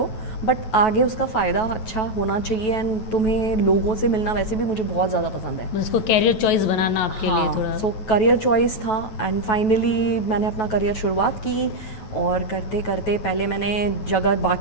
बट आगे उसका फ़ायदा अच्छा होना चाहिए। एंड तुम्हें लोगों से मिलना वैसे भी मुझे बहुत ज़्यादा पसंद है। उसको कैरियर चॉइस बनाना आपके लिए थोड़ा। सो करियर चॉइस था। एंड फाइनली मैंने अपना करियर शुरुआत की, और करते करते पहले मैंने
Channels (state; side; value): late; right; 9.2 ms